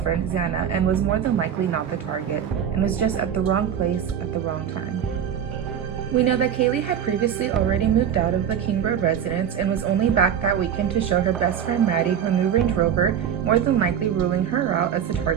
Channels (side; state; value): left; quieter; 8.8 dB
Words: Xana, and was more than likely not the target, and was just at the wrong place at the wrong time. We know that Kaylee had previously already moved out of the King Road residence and was only back that weekend to show her best friend Maddie her new Range Rover, more than likely ruling her out as the